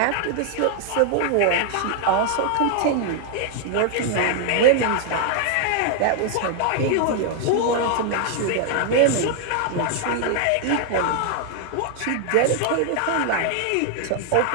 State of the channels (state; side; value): different; both; correlation 0.00